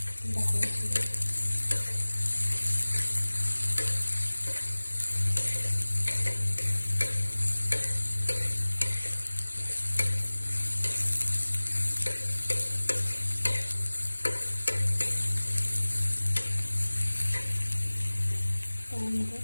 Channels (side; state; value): both; inverted; correlation -1.00